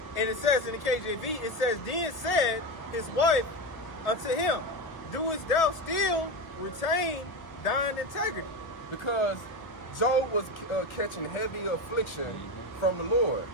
And it says in the KJV, it says, then said his wife unto him, doest thou still retain thine integrity? Because Job was catching heavy affliction from the Lord.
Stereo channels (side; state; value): right; late; 1.6 ms